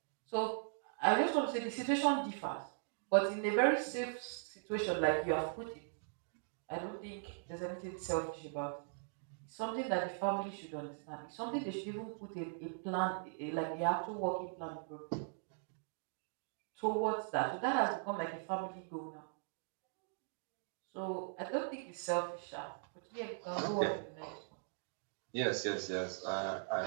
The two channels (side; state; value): left; silent; digital silence